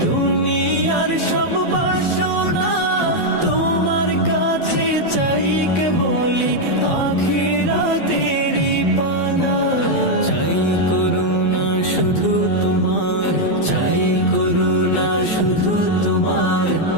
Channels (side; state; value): right; late; 12 ms